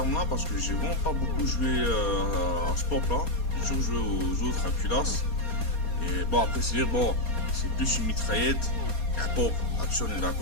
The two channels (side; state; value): right; late; 4.2 ms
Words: parce que j'ai vraiment pas beaucoup joué à ce pop-là. J'ai toujours joué aux autres, à Culasse. Et bon, après, c'est dire, bon, c'est plus une mitraillette qu'un pop. Là-dessus, on est